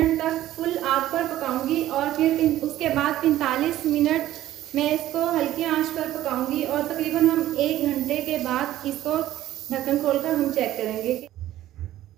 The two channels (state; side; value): quieter; left; 13.8 dB